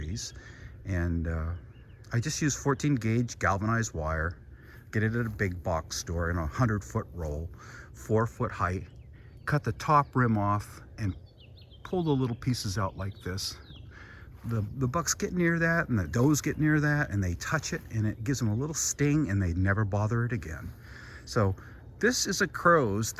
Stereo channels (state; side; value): identical; both; correlation 1.00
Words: And I just use 14 gauge galvanized wire, get it at a big box store in a 100-foot roll, 4-foot height, cut the top rim off and pull the little pieces out like this. The bucks get near that and the does get near that and they touch it and it gives them a little sting and they never bother it again. So this is a crow's